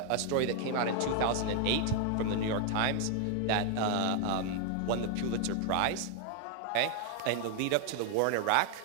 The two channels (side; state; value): both; different; correlation 0.00